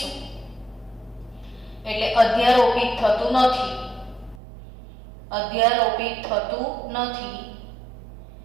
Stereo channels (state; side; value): drops out; left; at 4.4 s